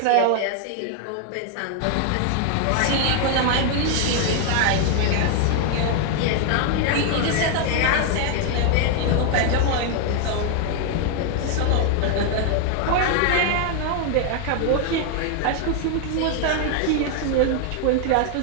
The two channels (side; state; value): both; different; correlation 0.00